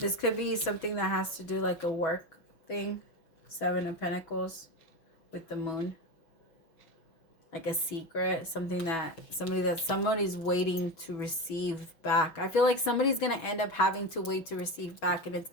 could be something that has to do like a work thing. Seven of Pentacles with the Moon. Like a secret, something that somebody's waiting to receive back. I feel like somebody's going to end up having to wait to receive back, and it's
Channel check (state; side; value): late; right; 6.2 ms